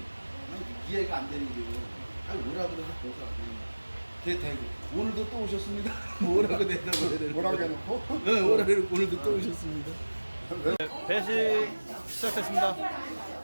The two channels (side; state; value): both; inverted; correlation -1.00